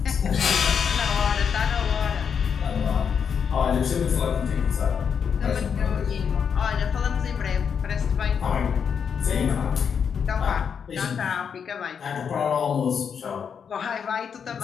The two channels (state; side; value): quieter; right; 7.0 dB